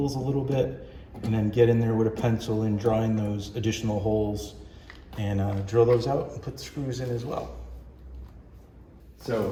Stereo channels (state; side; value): identical; both; correlation 1.00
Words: a little bit, and then get in there with a pencil and draw in those additional holes and drill those out and put the screws in as well.